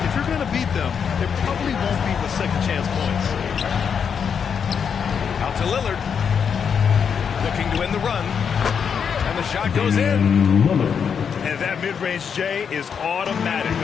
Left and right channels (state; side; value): quieter; right; 7.0 dB